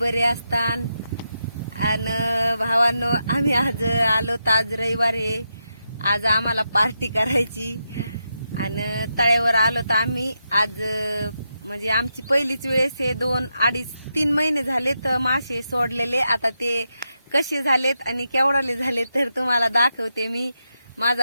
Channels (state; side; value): inverted; both; correlation -0.85